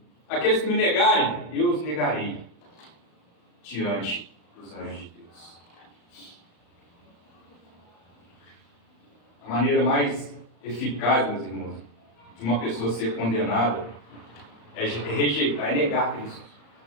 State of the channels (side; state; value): right; late; 34 ms